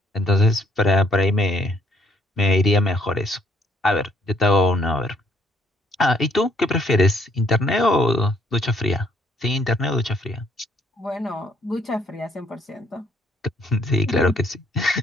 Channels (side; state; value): both; normal; correlation 0.67